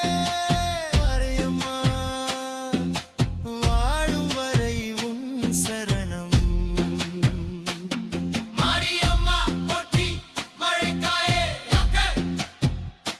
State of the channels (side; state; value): both; identical; correlation 1.00